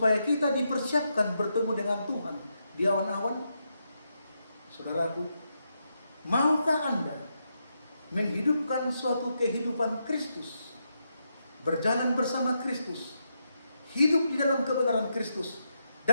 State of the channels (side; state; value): both; inverted; correlation -0.83